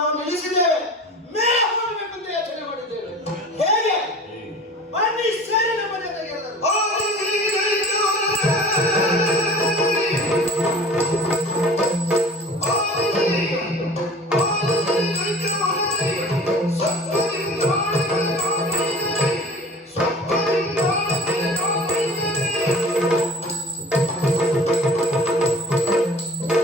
ನಾವು ನಿಲ್ಲಿಸಿದ್ದೇವೆ, ಮೇಲೆ ಹೋಗಬೇಕು ಅಂತ ಯೋಚನೆ ಮಾಡಿದ್ದೇವೆ. ಹೇಗೆ? ಬನ್ನಿ ಸೇರಿ ನಮ್ಮ ಜೊತೆಗೆ ಎಲ್ಲರೂ.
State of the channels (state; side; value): normal; both; correlation 0.42